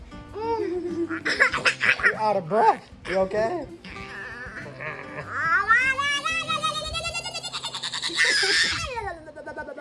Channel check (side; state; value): both; identical; correlation 1.00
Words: You're out of breath. You okay?